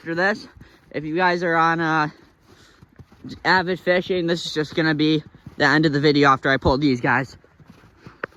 this. If you guys are on avid fishing, this is just gonna be the end of the video after I pull these guys.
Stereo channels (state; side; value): identical; both; correlation 1.00